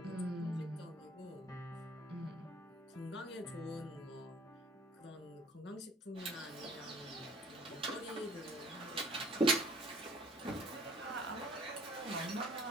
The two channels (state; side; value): normal; both; correlation 0.54